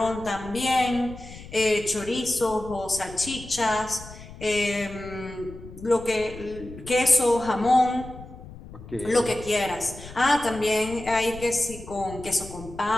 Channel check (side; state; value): left; noise; rumble, 15 dB below the sound